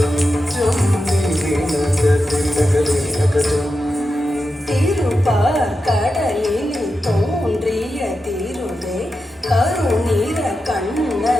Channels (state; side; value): normal; both; correlation 0.89